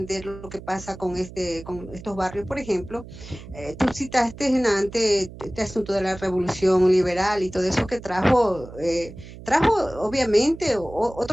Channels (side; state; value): right; noise; hum, 15 dB below the sound